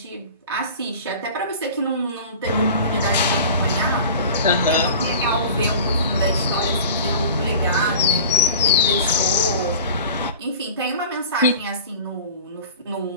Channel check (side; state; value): both; inverted; correlation -0.39